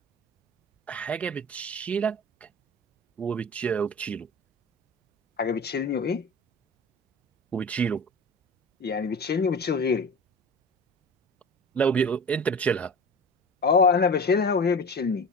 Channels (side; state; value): both; normal; correlation 0.34